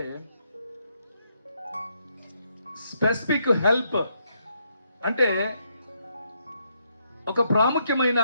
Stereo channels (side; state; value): both; inverted; correlation -0.76